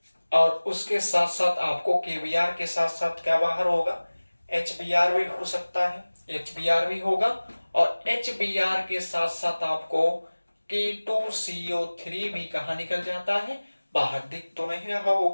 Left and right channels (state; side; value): inverted; both; correlation -1.00